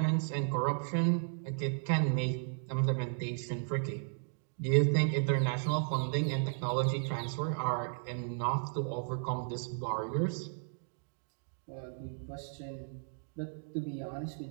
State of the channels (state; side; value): silent; left; digital silence